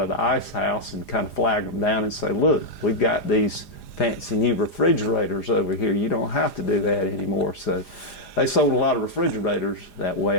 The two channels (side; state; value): right; late; 4.9 ms